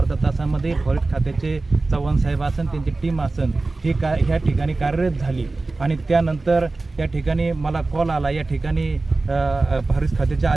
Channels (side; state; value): left; quieter; 3.3 dB